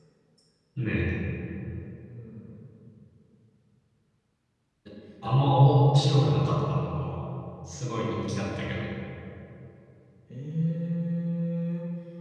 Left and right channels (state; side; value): identical; both; correlation 1.00